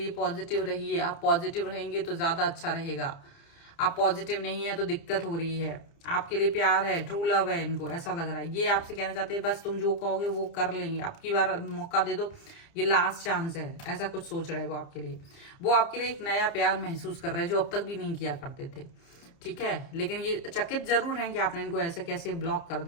पॉजिटिव रहिए। आप पॉजिटिव रहेंगे तो ज्यादा अच्छा रहेगा। आप पॉजिटिव नहीं है तो दिक्कत हो रही है। आपके लिए प्यार है, ट्रू लव है, इनको ऐसा लग रहा है। ये आपसे कहना चाहते हैं बस तुम जो कहोगे वो कर लेंगे, अब की बार मौका दे दो, ये लास्ट चांस है, ऐसा कुछ सोच रहे हैं वो आपके लिए। वो आपके लिए एक नया प्यार महसूस कर रहे हैं जो अब तक भी नहीं किया करते थे, ठीक है। लेकिन ये चकित जरूर हैं कि आपने इनको ऐसे कैसे ब्लॉक कर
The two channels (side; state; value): right; late; 30 ms